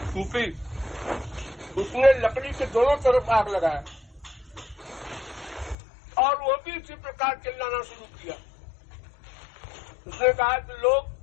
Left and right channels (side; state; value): right; drops out; at 5.8 s